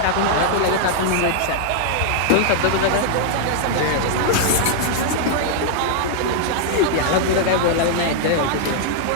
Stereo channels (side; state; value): both; different; correlation -0.01